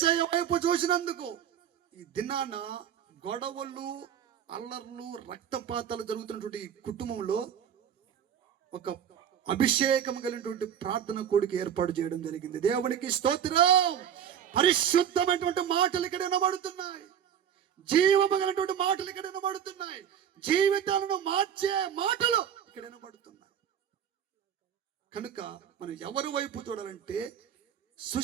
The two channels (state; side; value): quieter; left; 9.1 dB